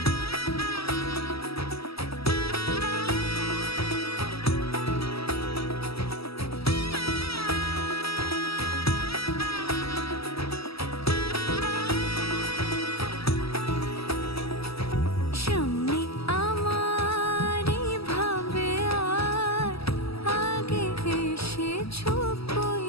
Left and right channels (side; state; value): right; late; 0.76 ms